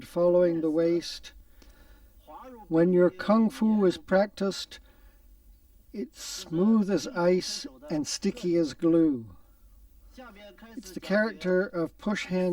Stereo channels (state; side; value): identical; both; correlation 1.00